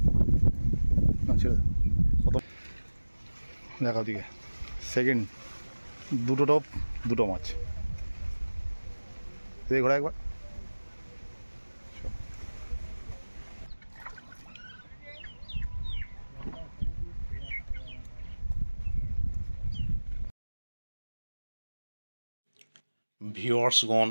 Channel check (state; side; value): inverted; both; correlation -1.00